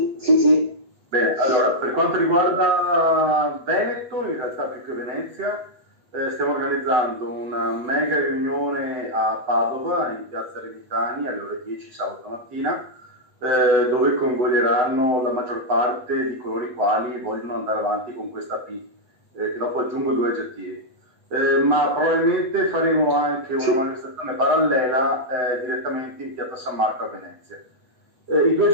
Sì. Bene, allora, per quanto riguarda Veneto, in realtà più che Venezia, stiamo organizzando una mega riunione a Padova, in piazza Revitani, alle ore 10 sabato mattina, dove coinvolgeranno la maggior parte di coloro i quali vogliono andare avanti con questa P, che dopo aggiungo 2 aggettivi. Ma probabilmente faremo anche una manifestazione parallela direttamente in piazza San Marco a Venezia. I 2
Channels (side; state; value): left; late; 8.2 ms